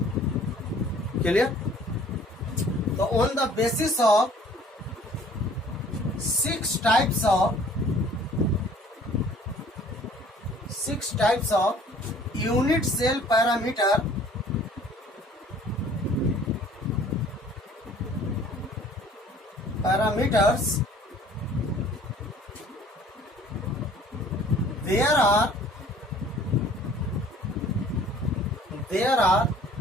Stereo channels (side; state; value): both; normal; correlation 0.53